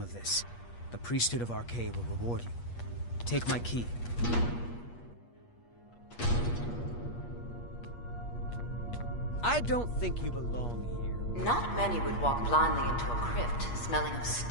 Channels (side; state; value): right; late; 8.4 ms